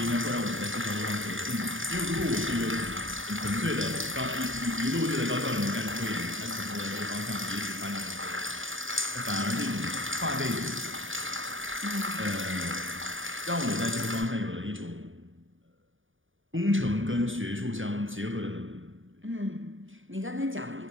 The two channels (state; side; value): late; left; 0.57 ms